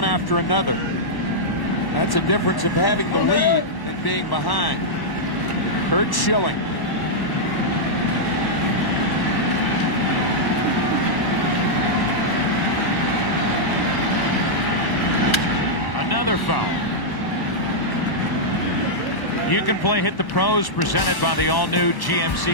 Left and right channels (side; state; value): right; late; 1.1 ms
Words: after another. That's a difference of having the lead and being behind. Curt Schilling. Another foul. You can play Hit the Pros, presented by the all-new